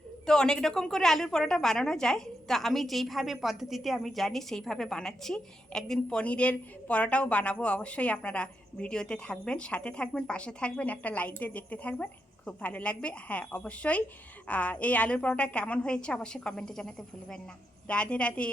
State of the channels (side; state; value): both; normal; correlation 0.83